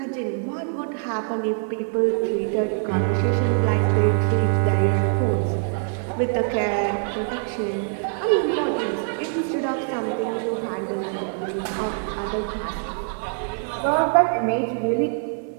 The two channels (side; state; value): left; silent; 63 dB below the other